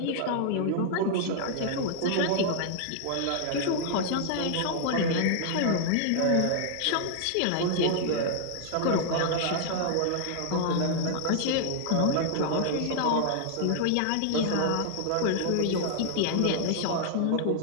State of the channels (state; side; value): different; both; correlation -0.01